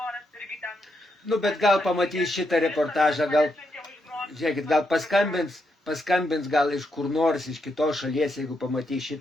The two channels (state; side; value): normal; both; correlation 0.81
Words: irgi ten. Nu, bet gal pamatys šitą reportažą, gal, žiūrėkit, gal paskambins gal iš kur nors, iš kitos šalies, jeigu pamatys